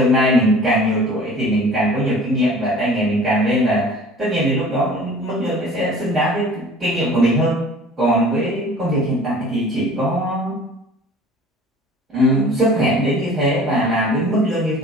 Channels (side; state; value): both; normal; correlation 0.46